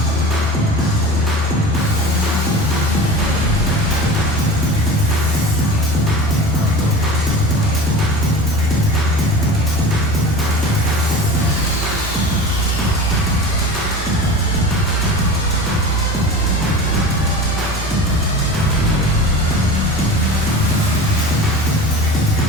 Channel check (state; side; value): normal; both; correlation 0.34